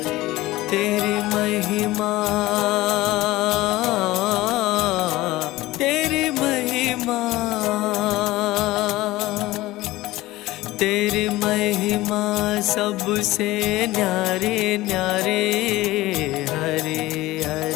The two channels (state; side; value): quieter; right; 18.1 dB